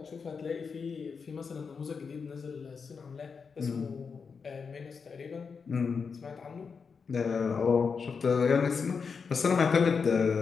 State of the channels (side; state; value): right; quieter; 5.6 dB